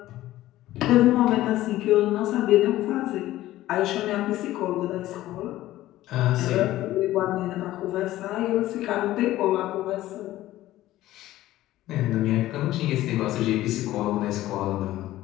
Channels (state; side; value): quieter; right; 15.3 dB